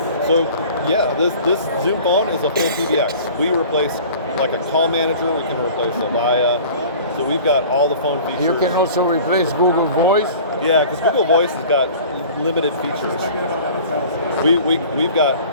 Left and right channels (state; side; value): inverted; both; correlation -0.44